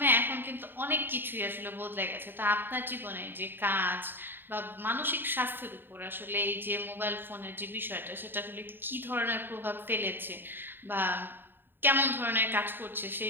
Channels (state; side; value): late; left; 0.096 ms